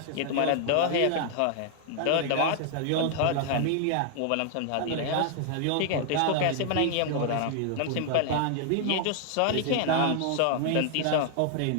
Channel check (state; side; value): different; both; correlation 0.00